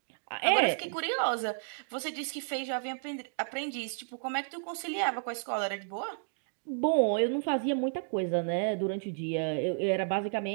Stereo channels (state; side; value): silent; left; digital silence